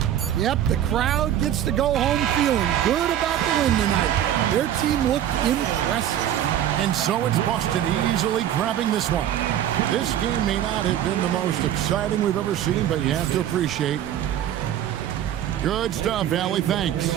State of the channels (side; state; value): left; quieter; 11.1 dB